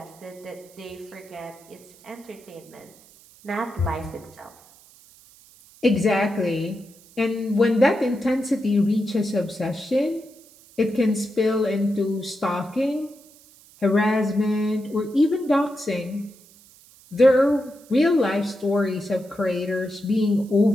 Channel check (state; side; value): noise; right; hiss, 25 dB below the sound